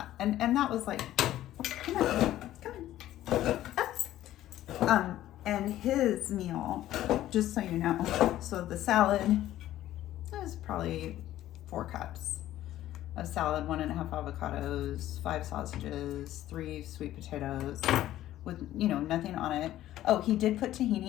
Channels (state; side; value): quieter; right; 13.7 dB